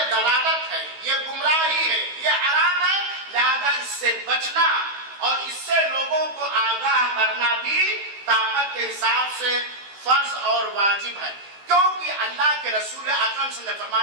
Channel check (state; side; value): late; left; 16 ms